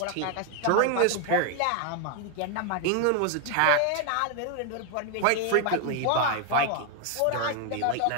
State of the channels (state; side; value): different; both; correlation 0.01